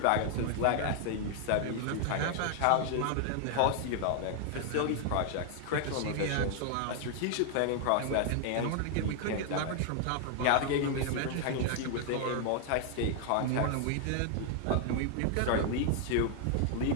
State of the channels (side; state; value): both; different; correlation 0.00